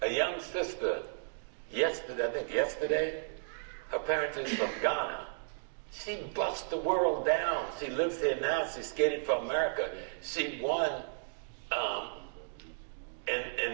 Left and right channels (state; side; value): silent; left; digital silence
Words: A young sister, yesterday, her parents is from Ghana. She bust the world down. She lives here now. She skated for America. She won